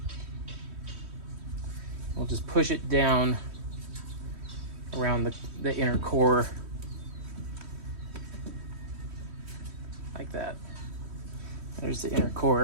We'll just push it down around the inner core like that. There's the inner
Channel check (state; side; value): late; left; 3.1 ms